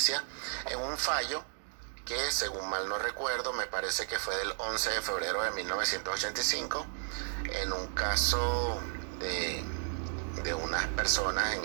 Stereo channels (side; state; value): left; silent; digital silence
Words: en un fallo que, según mal no recuerdo, me parece que fue del 11 de febrero de 1985, en un caso de unas personas, en